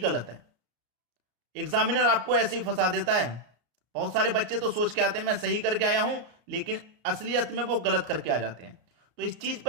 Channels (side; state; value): left; late; 33 ms